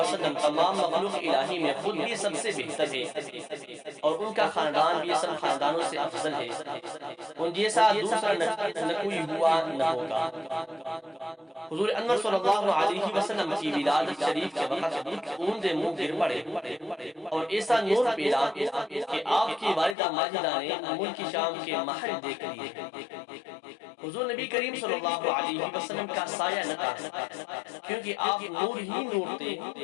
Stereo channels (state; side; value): drops out; right; at 20.0 s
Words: تمام مخلوق الہی میں خود بھی سب سے بہتر ہے، اور ان کا خاندان بھی سب خاندانوں سے افضل ہے۔ ان جیسا دوسرا نہ کوئی ہوا نہ ہوگا۔ حضور انور صلی اللہ علیہ وسلم کی ولادت شریف کے وقت اون منہ گر پڑے اور ایسا نور پیدا کہ آپ کی والدہ ماجدہ نے ملک شام کے محل دیکھ لیے۔ حضور نبی کریم صلی اللہ علیہ وسلم کا سایہ نہ تھا، کیونکہ آپ نور ہی نور تھے